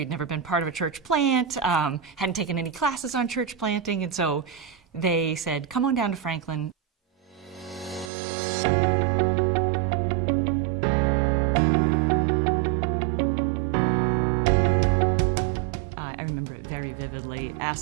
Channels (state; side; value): drops out; left; at 8.1 s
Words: never been part of a church plant, hadn't taken any classes on church planting, and so they said, come on down to Franklin. I remember it very vividly.